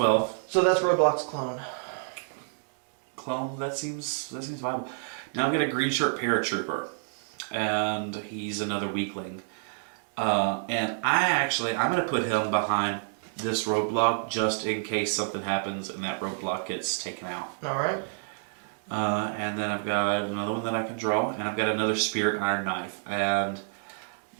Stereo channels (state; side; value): silent; left; digital silence